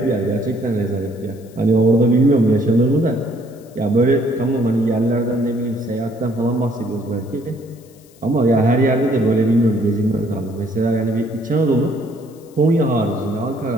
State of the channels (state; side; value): noise; left; hiss, 29 dB below the sound